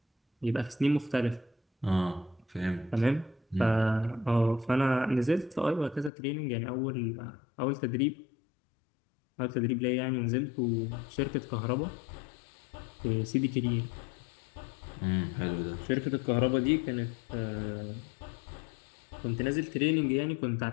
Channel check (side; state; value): right; drops out; at 6.1 s